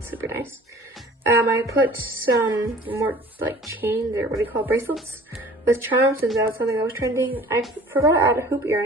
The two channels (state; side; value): normal; both; correlation 0.47